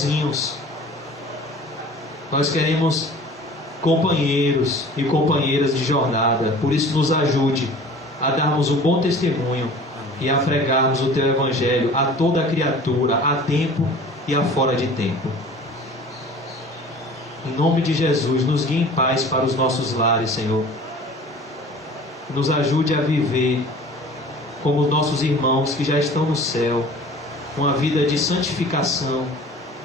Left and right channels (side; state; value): both; normal; correlation 0.44